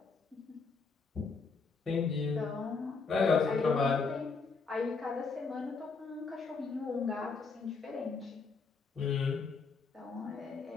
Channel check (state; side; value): quieter; right; 4.7 dB